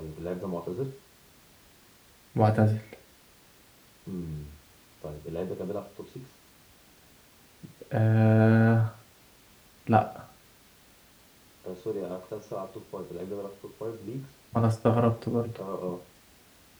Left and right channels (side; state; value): both; identical; correlation 1.00